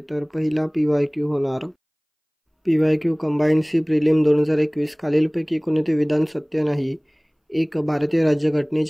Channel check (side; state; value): both; identical; correlation 1.00